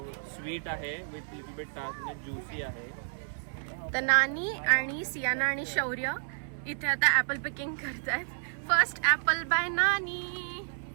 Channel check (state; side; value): silent; left; 57 dB below the other